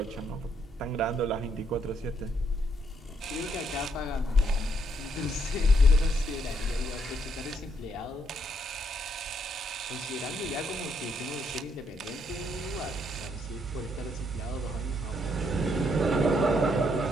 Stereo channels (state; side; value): normal; both; correlation 0.74